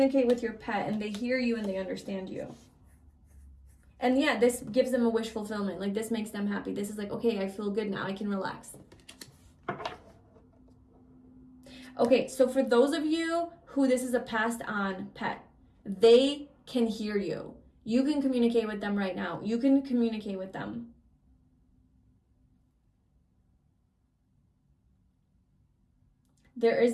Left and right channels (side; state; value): both; identical; correlation 1.00